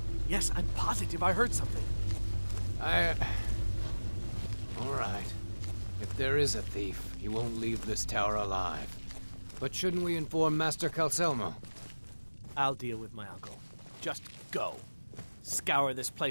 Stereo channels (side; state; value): both; inverted; correlation -1.00